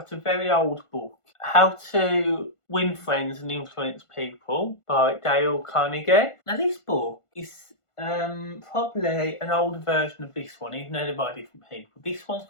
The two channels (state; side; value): late; right; 1.5 ms